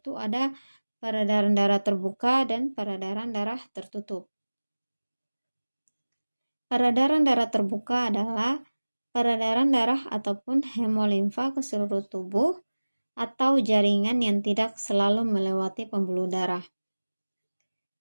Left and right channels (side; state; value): both; inverted; correlation -1.00